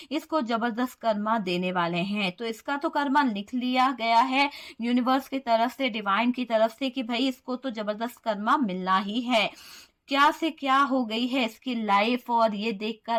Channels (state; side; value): identical; both; correlation 1.00